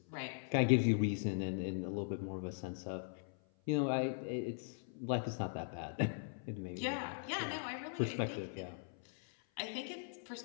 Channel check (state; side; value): silent; right; 51 dB below the other